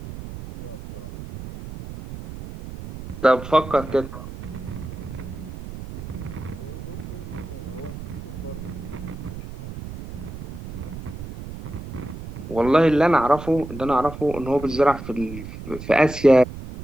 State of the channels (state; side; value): noise; right; rumble, 11 dB below the sound